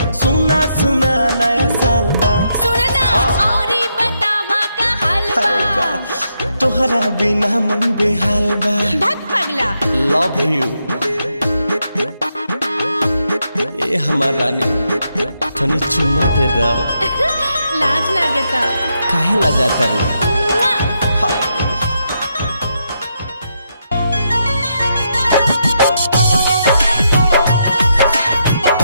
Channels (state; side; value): inverted; both; correlation -0.80